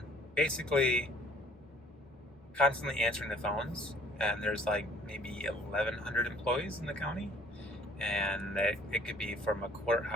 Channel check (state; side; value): normal; both; correlation 0.58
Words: basically constantly answering the phones, and there's like maybe 1,100 employees in the county, and it could be from a